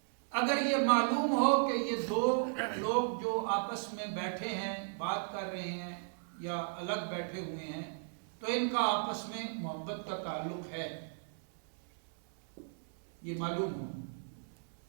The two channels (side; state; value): left; silent; 54 dB below the other